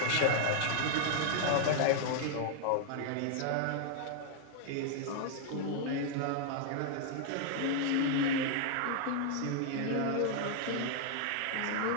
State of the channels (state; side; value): different; both; correlation 0.00